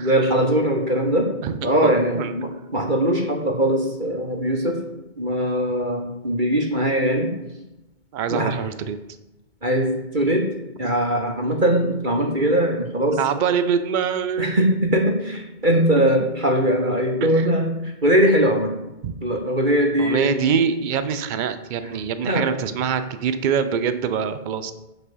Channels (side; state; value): left; late; 2.2 ms